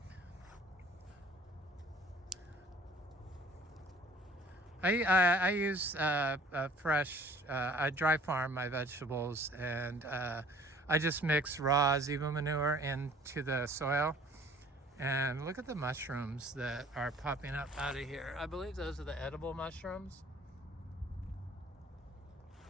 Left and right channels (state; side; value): normal; both; correlation 0.53